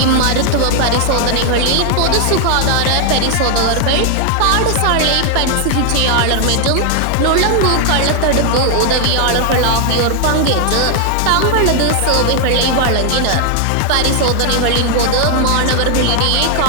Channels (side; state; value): both; different; correlation 0.00